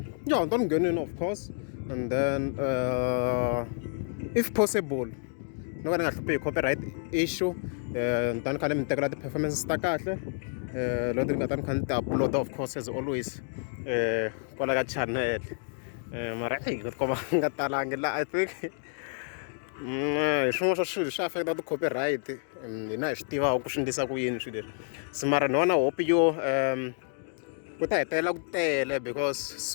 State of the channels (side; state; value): right; silent; 58 dB below the other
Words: yeah, don't get in, of course, and then if possible no ka ni nga hluphi copyright issue ni ta ni kha ni mi tekela ti-performances ta kahle loko ni nga ta ni kha ni ti-upload of course as always kwala ka channel mara ni tikomba nga talangi la I think hi swin'wana swa swilo swi affecta ti-copyright hina hi swi tivaka ku swi endlisa ku yini swilo leswi se mara ni vona hope yo ku ta hetelela ku tele because